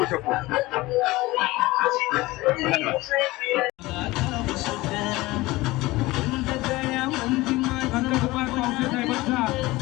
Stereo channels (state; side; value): quieter; right; 20.0 dB